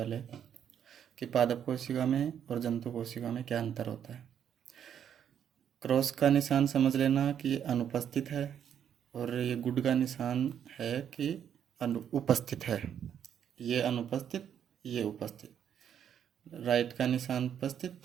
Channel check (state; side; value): quieter; left; 9.0 dB